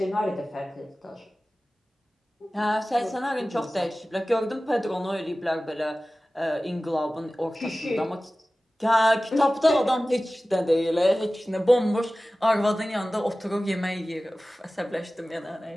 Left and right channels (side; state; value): both; normal; correlation 0.97